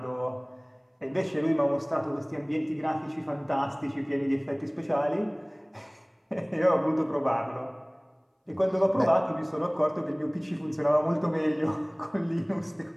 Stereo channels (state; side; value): identical; both; correlation 1.00